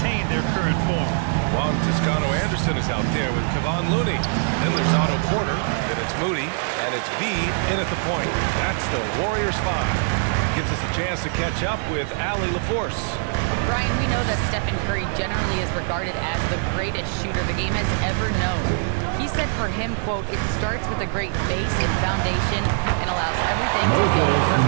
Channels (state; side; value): silent; left; 64 dB below the other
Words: their current form. Juan Toscano-Anderson is out there with Kevon Looney. Then there's Otto Porter, then it's Moody, and it's B in at the point. That's the Warriors 5. Gives us a chance to catch up with Allie LaForce. Brian, we know that Stephen Curry generally is regarded as the greatest shooter the game has ever known. He said for him, quote, "It starts with a great base and foundation and allows everything to feel